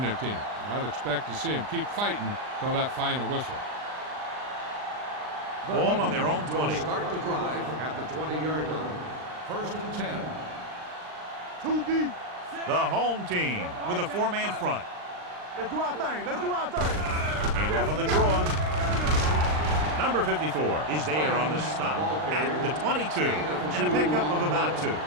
team. I'd expect to see them keep fighting till that final whistle. Ball on their own 20. Start the drive at the 20-yard line. 1st and 10. Too deep. The home team with a four-man front. Let's do our thing. Hand off on the draw. Number 54 is there on the stop at the 22 and a pickup of about 2.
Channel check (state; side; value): late; left; 39 ms